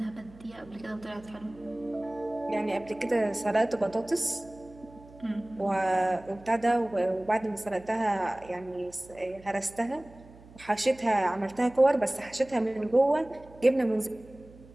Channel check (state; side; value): noise; right; hum, 22 dB below the sound